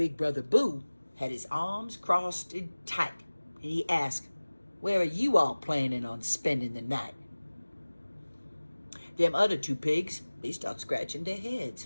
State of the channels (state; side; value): inverted; both; correlation -1.00